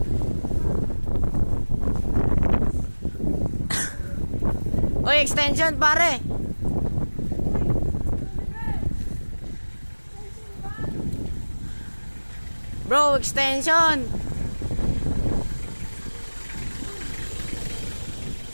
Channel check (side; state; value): both; inverted; correlation -1.00